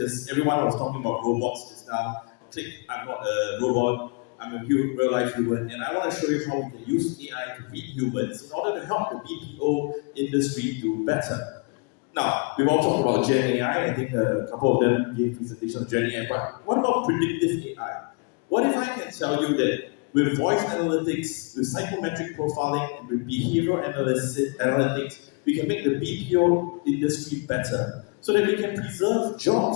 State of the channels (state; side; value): quieter; right; 33.6 dB